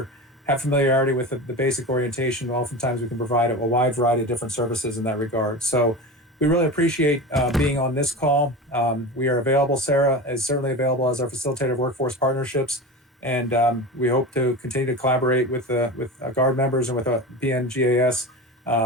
have familiarity with the basic orientation, oftentimes we can provide a wide variety of different services in that regard. So we really appreciate being on this call. We are available. Sarah is certainly available as our facilitator of workforce partnerships. And we hope to continue to collaborate with Guard members and with PNGAS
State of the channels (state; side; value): normal; both; correlation 0.29